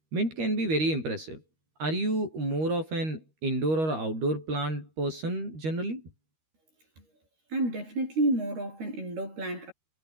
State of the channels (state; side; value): late; left; 13 ms